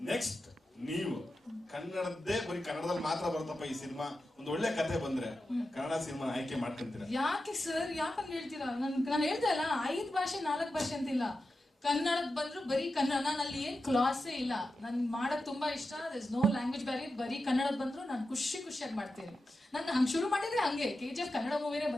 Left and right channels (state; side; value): normal; both; correlation 0.91